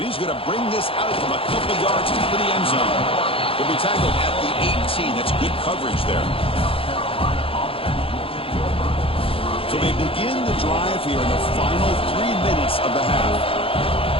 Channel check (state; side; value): late; right; 0.27 ms